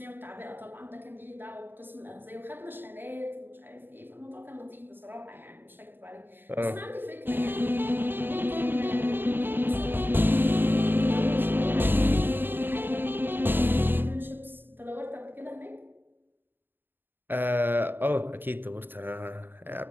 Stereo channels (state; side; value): late; left; 0.096 ms